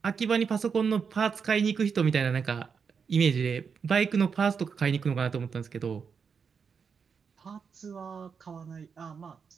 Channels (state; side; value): quieter; left; 6.1 dB